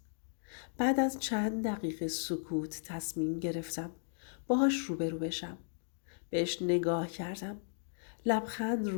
بعد از چند دقیقه سکوت تصمیم گرفتم باهاش روبرو بشم. بهش نگاه کردم. لبخند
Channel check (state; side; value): silent; right; digital silence